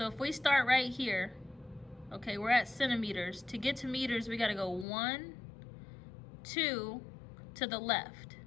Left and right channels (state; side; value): drops out; right; at 4.9 s